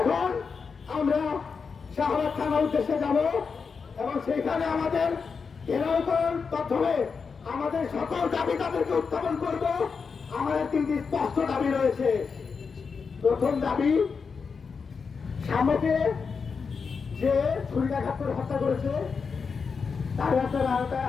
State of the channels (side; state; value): right; quieter; 5.4 dB